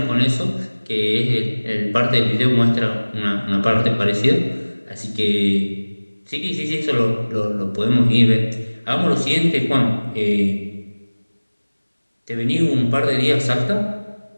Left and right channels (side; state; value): both; inverted; correlation -1.00